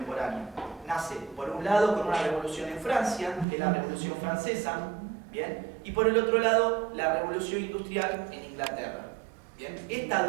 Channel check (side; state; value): left; drops out; at 3.5 s